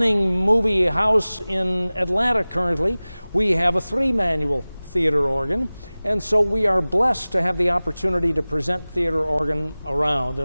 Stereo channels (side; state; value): both; inverted; correlation -0.99